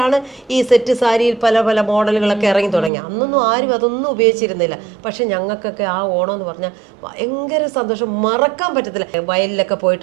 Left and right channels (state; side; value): drops out; left; at 2.9 s